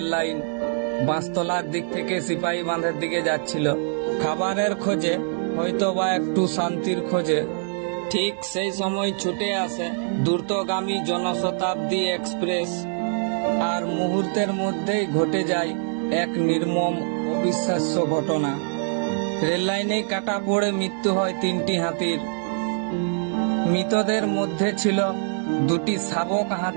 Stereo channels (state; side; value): silent; left; 61 dB below the other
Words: লাইন। বাঁশতলার দিক থেকে সিপাহী বাঁধের দিকে যাচ্ছিল, খাবারের খোঁজে, হয়তো বা একটু শান্তির খোঁজে। ঠিক সেই সময় ছুটে আসে দ্রুতগামী জনশতাব্দী এক্সপ্রেস, আর মুহূর্তের মধ্যেই ঘটে যায় এক নির্মম অবিশ্বাস্য ঘটনা। রেল লাইনেই কাটা পড়ে মৃত্যু হয় 3টি হাতির। মৃতদের মধ্যে ছিল 2টি শাবক